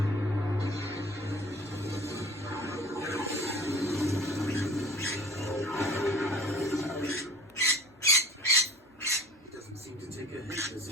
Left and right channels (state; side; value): normal; both; correlation 0.45